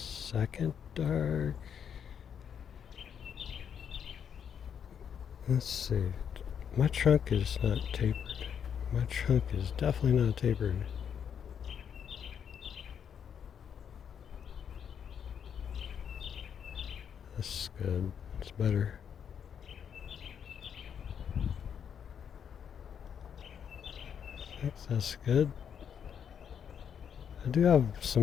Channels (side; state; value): right; quieter; 7.9 dB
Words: dark, let's see, my trunk is not tapered. My trunk is definitely not tapered. That's good. It's better. I think that's good. I do have